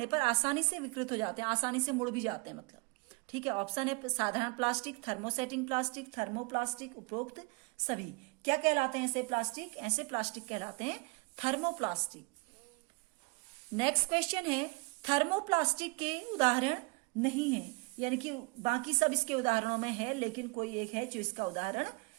पर आसानी से विकृत हो जाते हैं, आसानी से मुड़ भी जाते हैं मतलब। ठीक है, ऑप्शन है साधारण प्लास्टिक, थर्मोसेटिंग प्लास्टिक, थर्मोप्लास्टिक, उपरोक्त सभी। क्या कहलाते हैं ऐसे प्लास्टिक? ऐसे प्लास्टिक कहलाते हैं थर्मोप्लास्टिक। नेक्स्ट क्वेश्चन है, थर्मोप्लास्टिक के उदाहरण नहीं है, यानी कि बाकी सब इसके उदाहरणों में है लेकिन कोई एक है जो इसका उदाहरण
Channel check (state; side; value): quieter; left; 29.5 dB